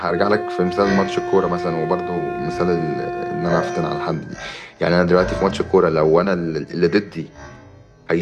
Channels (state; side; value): identical; both; correlation 1.00